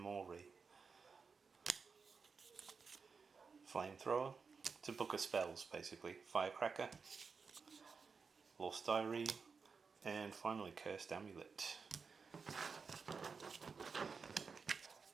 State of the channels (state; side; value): quieter; left; 5.2 dB